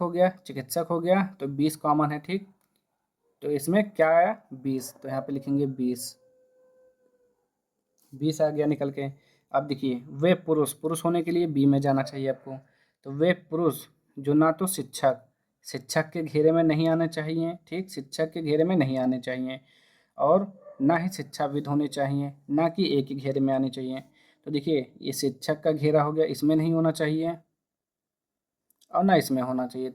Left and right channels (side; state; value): both; identical; correlation 1.00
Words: गया, चिकित्सक हो गया, तो 20 कॉमन है। ठीक, तो इसमें क्या आया, 20, तो यहाँ पे लिखेंगे 20, 20 आ गया निकल के। अब देखिए वे पुरुष, पुरुष होने के लिए बी में जाना चाहिए आपको। तो वे पुरुष जो ना तो शिक्षक, शिक्षक के घेरे में नहीं आने चाहिए। ठीक, शिक्षक के घेरे में नहीं आने चाहिए, और ना ही शिक्षाविद होने चाहिए, ना कि एक ही घेरे में आने चाहिए। तो देखिए ये शिक्षक का घेरा हो गया, इसमें नहीं होना चाहिए और ना इसमें होना चाहिए।